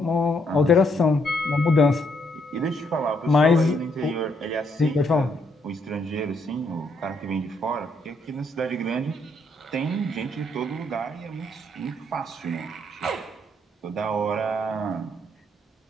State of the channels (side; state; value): both; normal; correlation 0.73